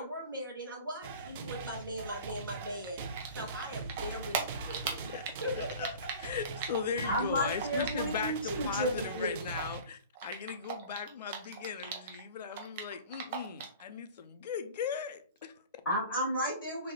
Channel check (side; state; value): both; inverted; correlation -0.40